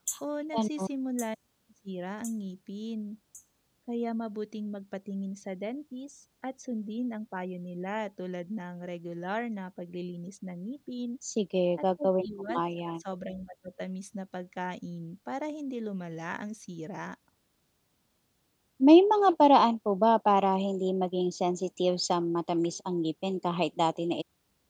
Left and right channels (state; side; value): identical; both; correlation 1.00